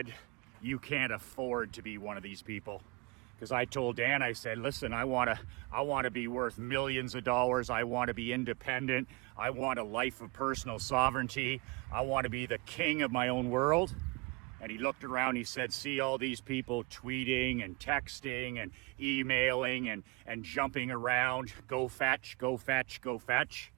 you can't afford to be one of these people. Because I told Dan, I said, listen, I want to be worth millions of dollars. I want to be independent. I want a life of personal sovereignty. I want to be the king of my own world. And he looked around, he said, see all these people tweeting and texting and emailing and jumping around. Go fetch, go fetch, go fetch.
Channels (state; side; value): quieter; left; 26.7 dB